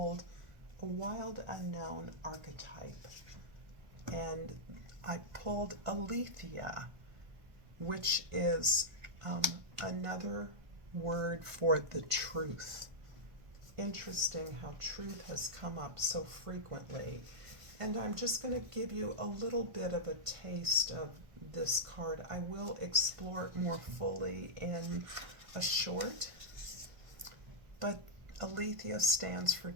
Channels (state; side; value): late; left; 1.5 ms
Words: a wild unknown archetype, and I pulled Aletheia, which is another word for the truth. Interesting how truth has come up so frequently. And I'm just going to give you a little bit of a taste of this card. I will explore it more fully in a short, but Aletheia stands for